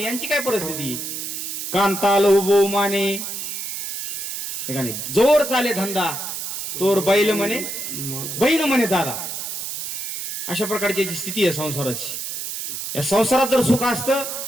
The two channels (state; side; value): noise; right; hiss, 5 dB below the sound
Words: काय परिस्थिती? कांताल उभो माने, जोर चाले धंदा तोर बैल म्हणे बहीण म्हणे दादा. अशा प्रकारची जी स्थिती आहे संसाराची. या संसारात जर सुख असतं